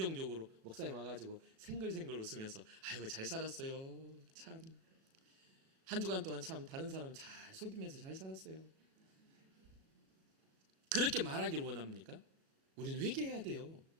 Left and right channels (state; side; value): late; left; 36 ms